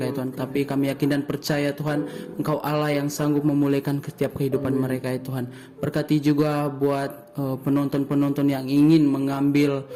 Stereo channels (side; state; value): both; identical; correlation 1.00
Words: ya Tuhan, tapi kami yakin dan percaya Tuhan, Engkau Allah yang sanggup memulihkan setiap kehidupan mereka ya Tuhan. Berkati juga buat penonton-penonton yang ingin mengambil